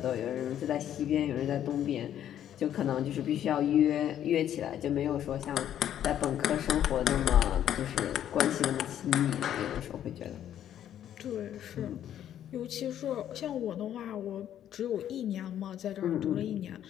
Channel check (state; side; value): quieter; right; 10.7 dB